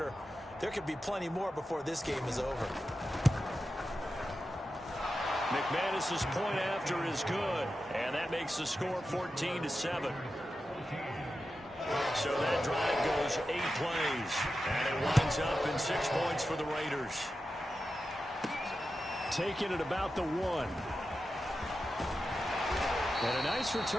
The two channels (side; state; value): both; normal; correlation 0.91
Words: There could be plenty more before this game is over. McManus's point after is good, and that makes the score 14-7. So that drive goes 8 plays, and it winds up in 6 points for the Raiders. Taking it about the 1. And a nice